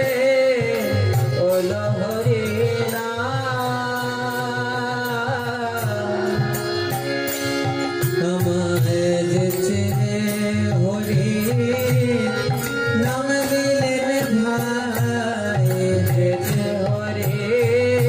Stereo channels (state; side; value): identical; both; correlation 1.00